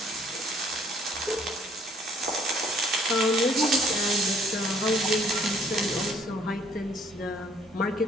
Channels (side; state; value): both; normal; correlation 0.60